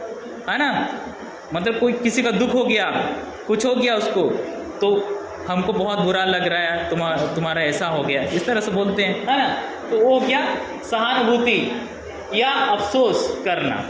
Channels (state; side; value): identical; both; correlation 1.00